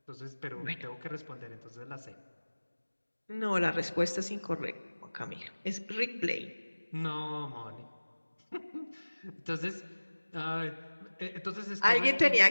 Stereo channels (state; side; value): inverted; both; correlation -1.00